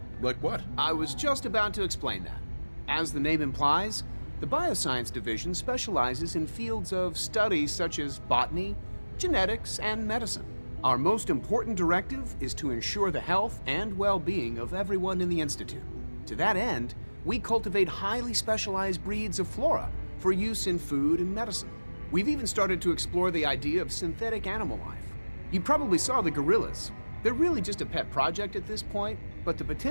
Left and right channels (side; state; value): both; inverted; correlation -1.00